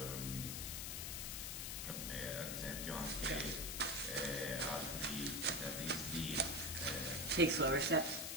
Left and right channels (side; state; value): left; noise; hiss, 3 dB below the sound